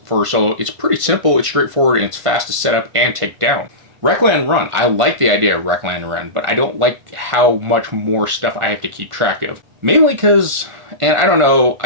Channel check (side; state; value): left; late; 1.5 ms